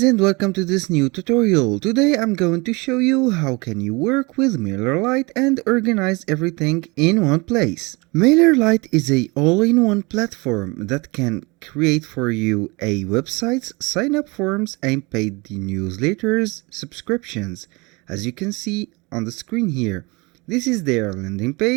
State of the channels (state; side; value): quieter; left; 26.4 dB